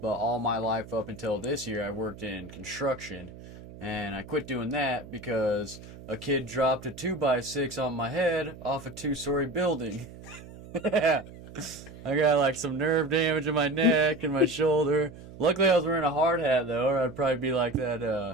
all my life up until this year, I worked in construction. And I quit doing that because a kid dropped a 2x6 on my head off a 2-story building. Yeah. I got like some nerve damage in my neck and my shoulder. Luckily, I was wearing a hard hat though, or I'd probably be like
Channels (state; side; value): noise; right; hum, 16 dB below the sound